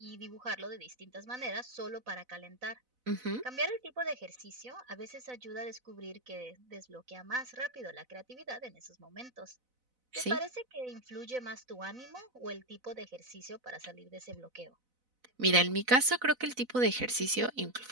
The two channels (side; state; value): left; late; 4.0 ms